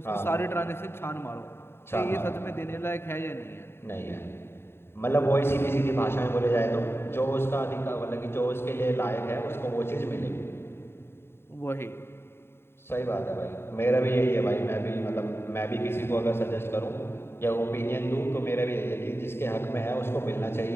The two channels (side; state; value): right; late; 0.11 ms